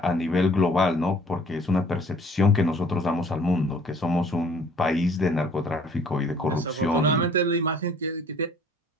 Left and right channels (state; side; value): normal; both; correlation 0.55